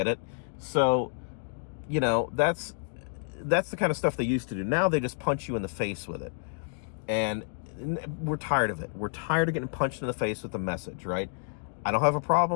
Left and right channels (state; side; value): silent; right; 58 dB below the other